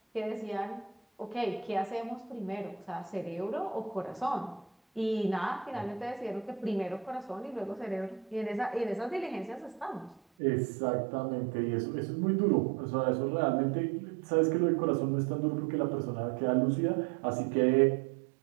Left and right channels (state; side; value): drops out; left; at 10.2 s